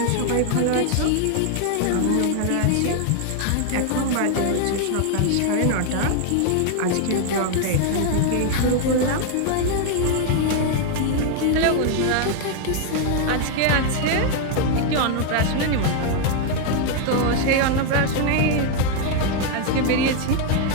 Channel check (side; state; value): both; different; correlation 0.00